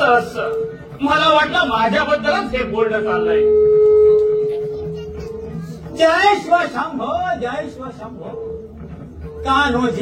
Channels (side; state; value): both; identical; correlation 1.00